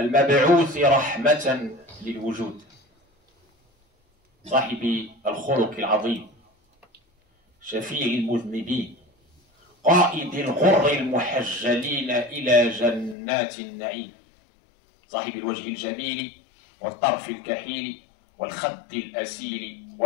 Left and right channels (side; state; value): right; drops out; at 13.2 s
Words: رحمة للوجود، صاحب الخلق العظيم، شفيع المذنبين، قائد الغر المحجلين إلى جنات النعيم، صاحب الوجه الجميل والطرف الكحيل والخد الأسيل